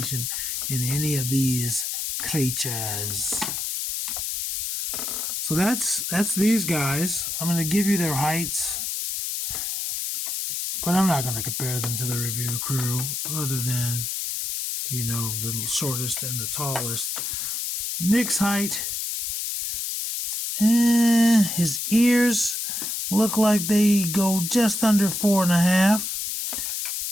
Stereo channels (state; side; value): noise; left; hiss, 3 dB below the sound